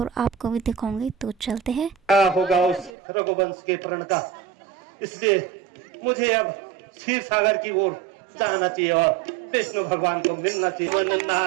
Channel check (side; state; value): left; drops out; at 2.9 s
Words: आपको भी दिखाऊंगी। तो चलते हैं। क्या होगा उस रघुवंश के प्रण का, इसलिए मुझे अब क्षीर सागर की ओर जाना चाहिए और विष्णु भगवान को मिलना चाहिए।